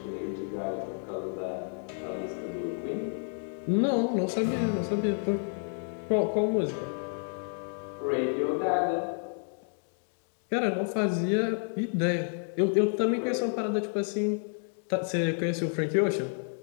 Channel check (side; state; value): right; silent; 58 dB below the other